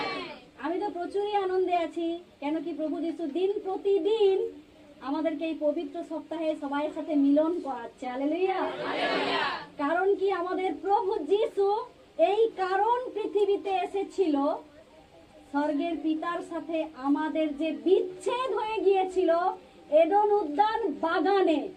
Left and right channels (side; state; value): both; identical; correlation 1.00